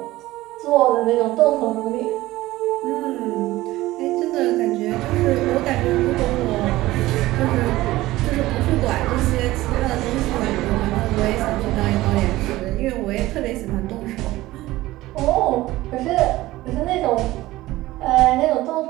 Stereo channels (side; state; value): left; quieter; 17.4 dB